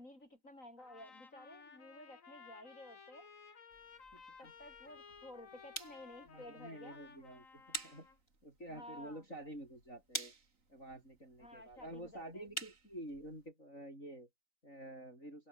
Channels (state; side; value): late; right; 3.9 ms